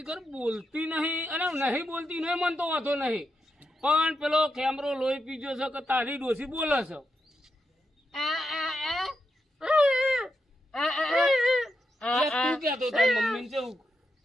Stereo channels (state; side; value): normal; both; correlation 0.85